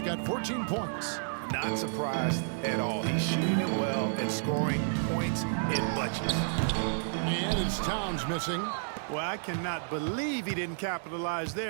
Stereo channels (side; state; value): left; silent; digital silence